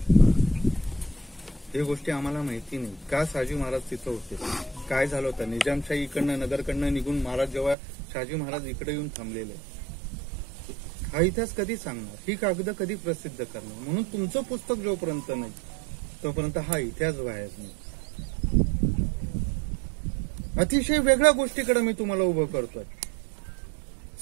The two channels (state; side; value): drops out; left; at 7.8 s